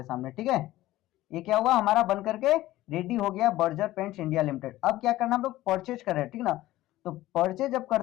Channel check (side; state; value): right; quieter; 16.1 dB